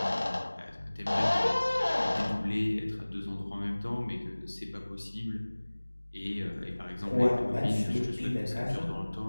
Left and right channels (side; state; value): both; inverted; correlation -1.00